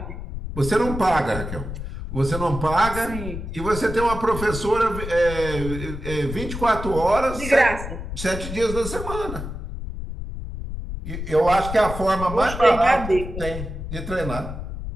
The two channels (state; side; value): noise; left; rumble, 7 dB below the sound